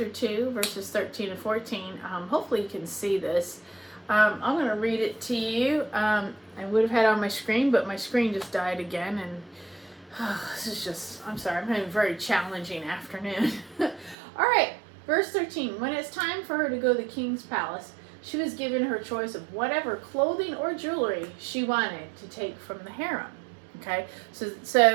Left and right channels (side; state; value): left; drops out; at 14.2 s